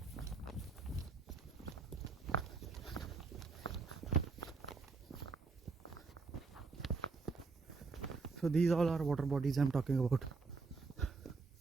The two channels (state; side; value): quieter; left; 4.2 dB